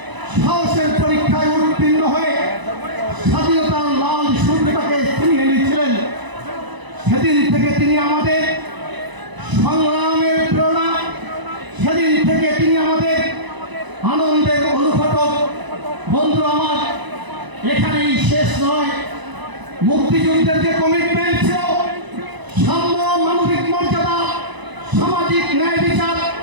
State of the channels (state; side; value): late; left; 1.0 ms